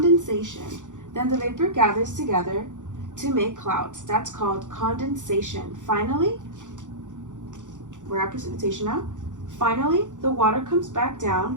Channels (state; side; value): late; left; 0.86 ms